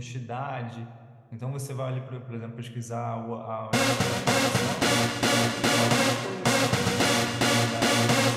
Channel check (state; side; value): identical; both; correlation 1.00